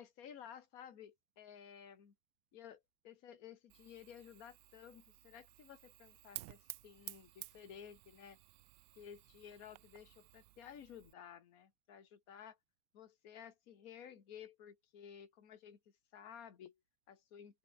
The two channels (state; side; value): late; right; 4.3 ms